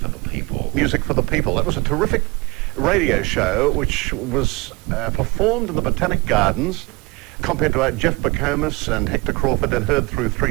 the people. Music for the People. That was a terrific radio show which was performed in the Botanic Gardens, compared to Jeff Bacomas and Hector Crawford, and heard through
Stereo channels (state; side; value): quieter; left; 25.2 dB